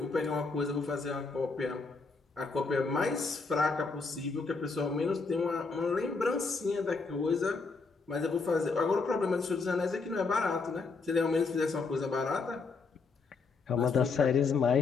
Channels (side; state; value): right; quieter; 4.4 dB